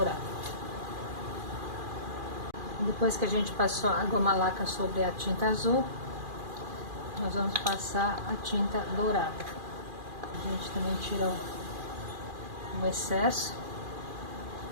Depois que a gente passou a goma laca sobre a tinta azul, nós vamos passar a tinta dourada. A gente também tira o excesso.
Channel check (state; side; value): late; left; 2.4 ms